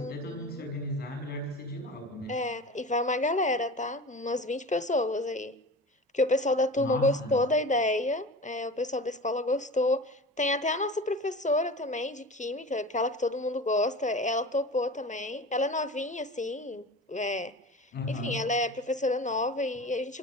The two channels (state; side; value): normal; both; correlation 0.34